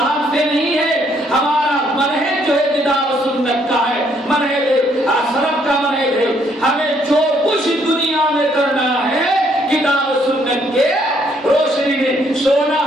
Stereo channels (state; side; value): normal; both; correlation 0.69